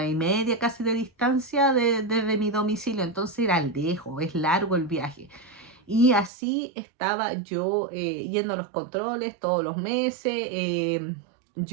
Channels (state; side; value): drops out; left; at 6.3 s